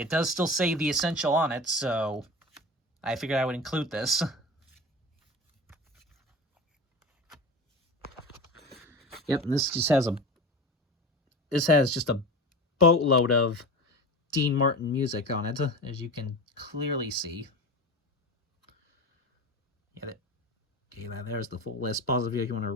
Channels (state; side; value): normal; both; correlation 0.30